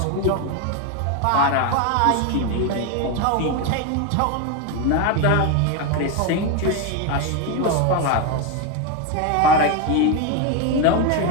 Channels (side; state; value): both; different; correlation 0.02